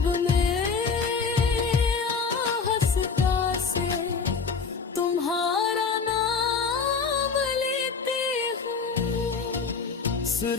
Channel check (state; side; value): quieter; right; 5.2 dB